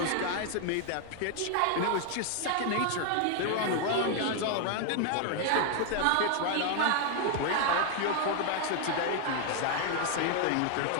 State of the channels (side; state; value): both; different; correlation 0.00